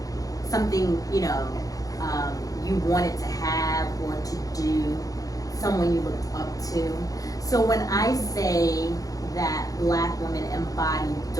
something, you wanted to have or to do, someone you looked up to. So when I say that Black women embody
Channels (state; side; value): late; right; 0.17 ms